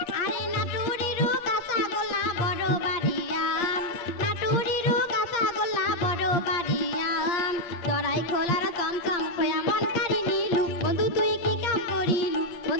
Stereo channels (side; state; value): right; late; 8.6 ms